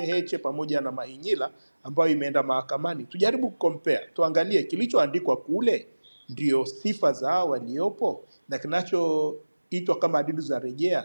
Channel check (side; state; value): both; inverted; correlation -1.00